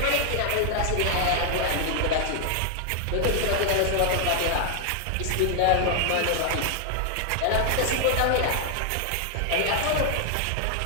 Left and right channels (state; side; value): different; both; correlation 0.00